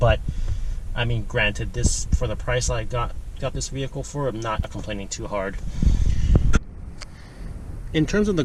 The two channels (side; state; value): both; identical; correlation 1.00